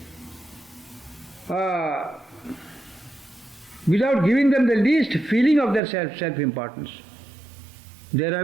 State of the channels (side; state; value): left; drops out; at 5.8 s